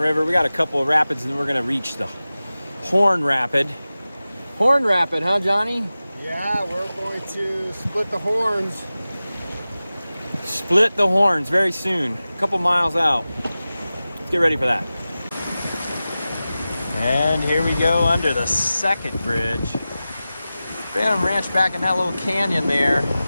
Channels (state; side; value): inverted; both; correlation -0.96